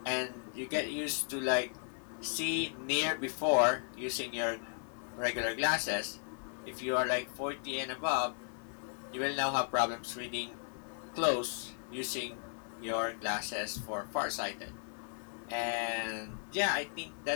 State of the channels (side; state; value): right; silent; 54 dB below the other